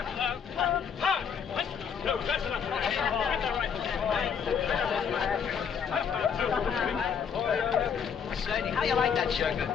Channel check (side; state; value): right; quieter; 7.1 dB